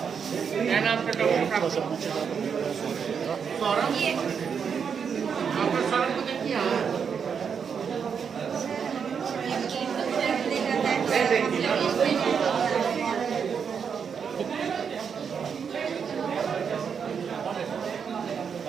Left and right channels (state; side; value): quieter; left; 6.7 dB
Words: क्या नाम का डॉक्टर साहब? सौरभ। डॉक्टर सौरभ को देखिए।